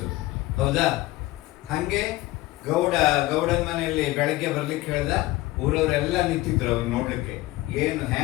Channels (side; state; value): right; quieter; 18.5 dB